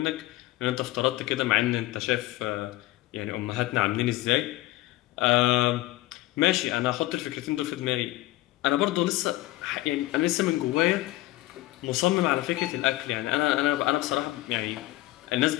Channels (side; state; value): right; quieter; 17.5 dB